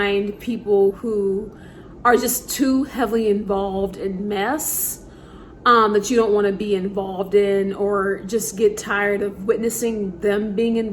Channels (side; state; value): both; identical; correlation 1.00